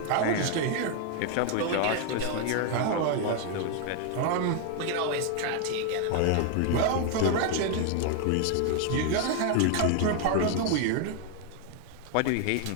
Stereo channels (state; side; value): different; both; correlation 0.00